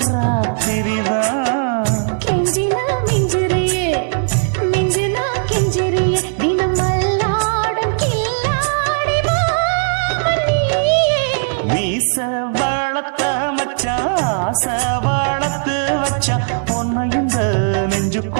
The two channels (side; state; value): left; silent; 57 dB below the other